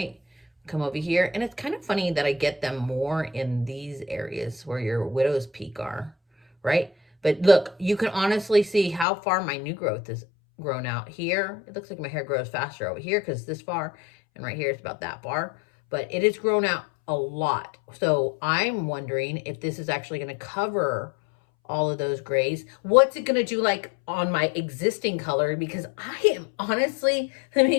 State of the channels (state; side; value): drops out; right; at 9.1 s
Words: Come over here. And it's kind of funny that I get them more in these areas where your widow's peak are, right? But look, you can honestly see how far my new growth is grown out. Here it looks like my hair grows faster over here because this far, and right here it's about that far, but it has grown out a lot. So I'm wondering if this is actually going to cover all of those grays. What's it going to do like on my existing color? Because I am honestly, let